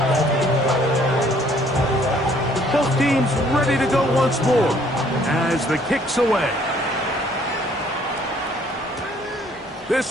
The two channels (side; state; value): both; normal; correlation 0.61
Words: Both teams ready to go once more as the kick's away.